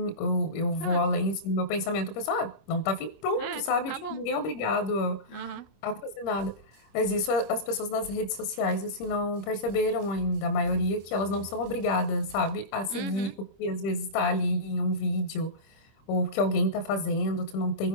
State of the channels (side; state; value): right; late; 25 ms